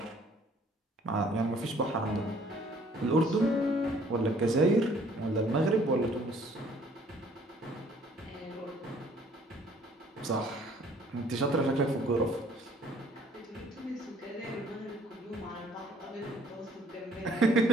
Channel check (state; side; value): normal; both; correlation 0.59